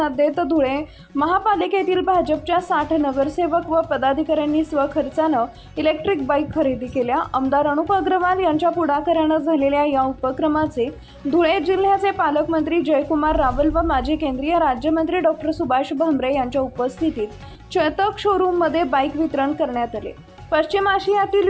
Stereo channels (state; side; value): identical; both; correlation 1.00